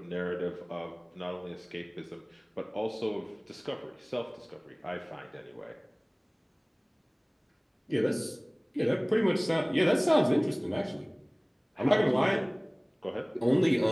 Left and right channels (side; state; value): both; identical; correlation 1.00